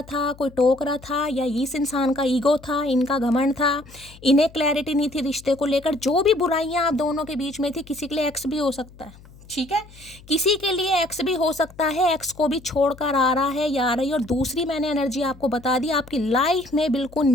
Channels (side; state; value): left; noise; hum, 22 dB below the sound